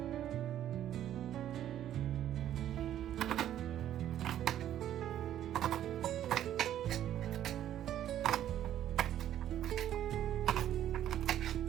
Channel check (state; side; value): quieter; left; 11.4 dB